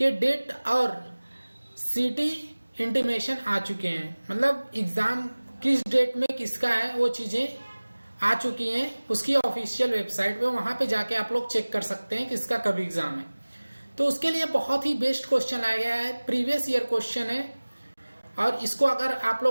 डेट और सीटी इंटीमेशन आ चुके हैं। मतलब एग्जाम किस डेट में किसका है वो चीजें आ चुकी हैं उसकी ऑफिशियल वेबसाइट पे। वहां पे जाके आप लोग चेक कर सकते हैं किसका कब एग्जाम है। तो उसके लिए बहुत ही बेस्ट क्वेश्चन लाया गया है, प्रीवियस ईयर क्वेश्चन है। और इसको अगर आप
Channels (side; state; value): both; inverted; correlation -1.00